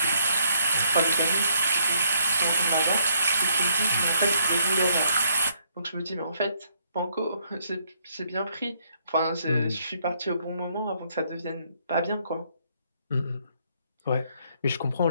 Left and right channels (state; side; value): inverted; both; correlation -0.71